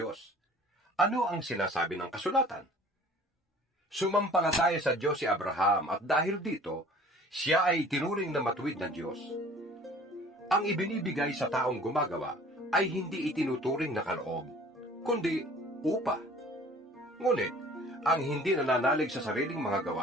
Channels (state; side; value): normal; both; correlation 0.49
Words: Ano ang sinasabi ng kasulatan? Sumampalataya sa Diyos si Abraham at dahil dito, siya ay itinuring na matuwid ng Diyos. Ang ibinibigay sa taong gumagawa ay hindi itinuturing na kaloob, kundi upa. Ngunit, ang hindi nananalig sa sariling mga